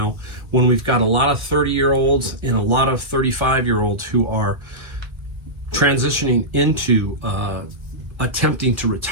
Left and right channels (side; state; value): left; late; 1.6 ms